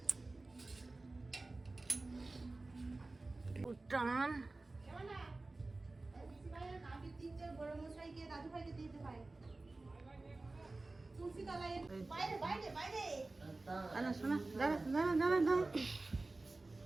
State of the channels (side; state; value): left; quieter; 3.2 dB